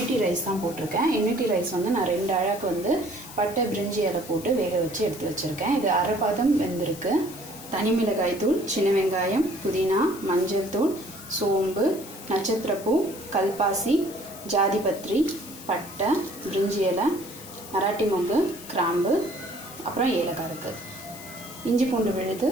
ரைஸ் தான் போட்டிருக்கேன். யூனிட்டி ரைஸ் வந்து நான் 2 அழகு வந்து பட்டை பிரிஞ்சி இலை போட்டு வேக வச்சு எடுத்து வச்சுருக்கேன். இது அரை பாதம் வெந்திருக்கு. தனி மிளகாய் தூள், சின்ன வெங்காயம், புதினா, மஞ்சள் தூள், சோம்பு, நட்சத்திரப்பூ, கல்பாசி, ஜாதி பத்திரி, பட்டை, பிரிஞ்சி இலை, மராட்டி மொக்கு, கிராம்பு, அப்புறம் ஏலக்காய் இருக்குது. இஞ்சி பூண்டு விழுது,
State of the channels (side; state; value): left; noise; hiss, 15 dB below the sound